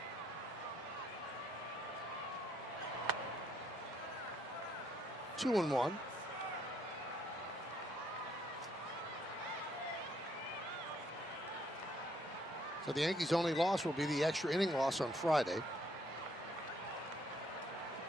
Two and one. So the Yankees' only loss will be the extra inning loss on Friday.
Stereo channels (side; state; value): both; normal; correlation 0.70